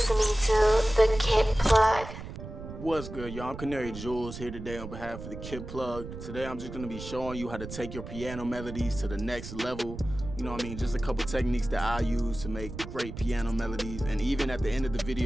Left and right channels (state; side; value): noise; right; rumble, 10 dB below the sound